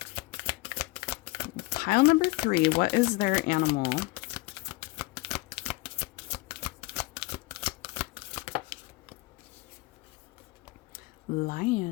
Pile number 3, what is their animal?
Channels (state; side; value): quieter; right; 22.2 dB